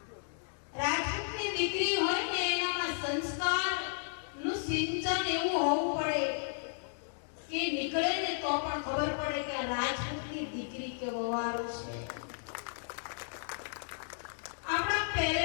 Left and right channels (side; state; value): right; silent; digital silence